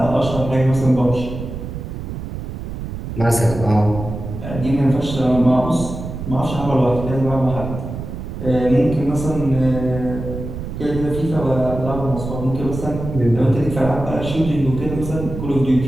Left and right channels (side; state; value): right; noise; rumble, 7 dB below the sound